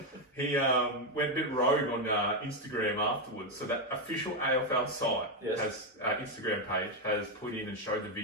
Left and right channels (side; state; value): both; normal; correlation 0.05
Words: He went a bit rogue on Instagram afterwards. So that official AFL site has Instagram page has put in and showed the